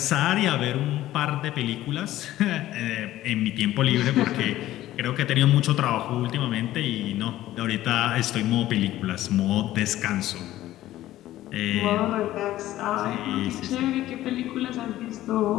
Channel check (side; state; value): right; quieter; 14.6 dB